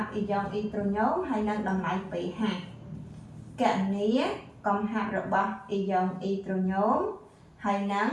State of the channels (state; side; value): identical; both; correlation 1.00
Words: ប់អ៊ីយ៉ុងអ៊ីត្រូញ៉ូមហើយនិងតម្លៃ pH កណនីកំហាប់របស់អ៊ីយ៉ុងអ៊ីត្រូញ៉ូមហើយនិង